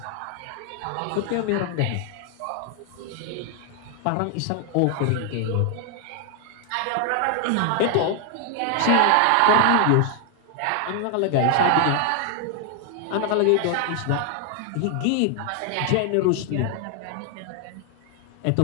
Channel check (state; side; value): different; both; correlation 0.00